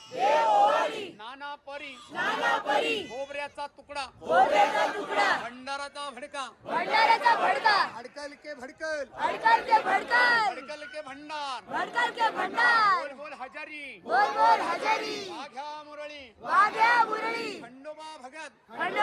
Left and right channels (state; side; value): identical; both; correlation 1.00